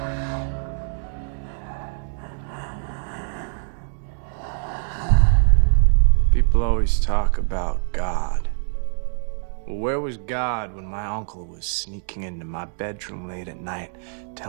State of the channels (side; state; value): left; silent; 62 dB below the other